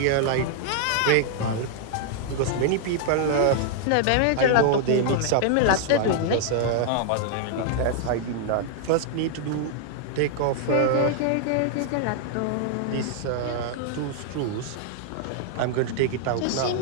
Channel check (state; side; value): different; both; correlation -0.01